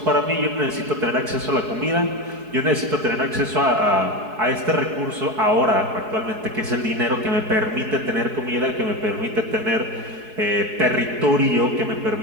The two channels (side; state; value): left; late; 4.7 ms